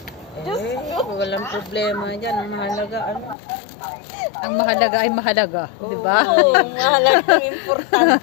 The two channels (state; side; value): drops out; right; at 3.4 s